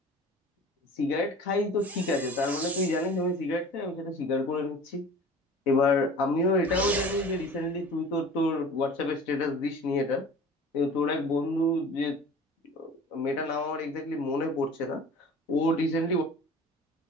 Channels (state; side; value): normal; both; correlation 0.42